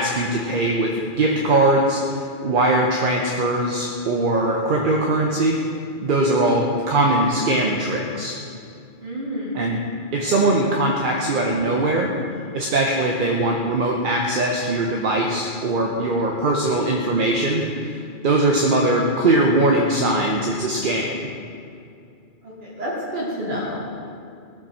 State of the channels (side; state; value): left; late; 2.4 ms